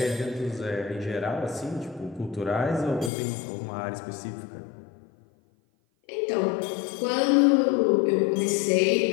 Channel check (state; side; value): drops out; right; at 3.1 s